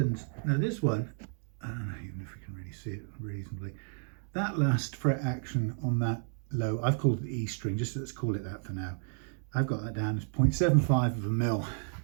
Now this one, I don't know even if we can really see it reasonably, that last fret action on that low, I've called it the E string, just let's call it that for now. I've got that down as 0.75 of a mil.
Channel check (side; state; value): left; silent; 56 dB below the other